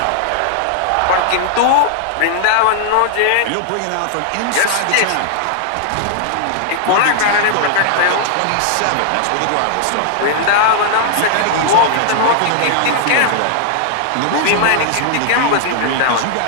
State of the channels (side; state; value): both; different; correlation 0.00